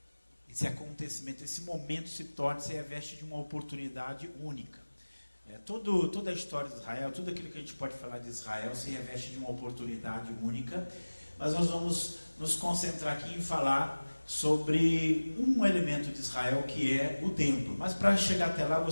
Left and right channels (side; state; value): both; inverted; correlation -1.00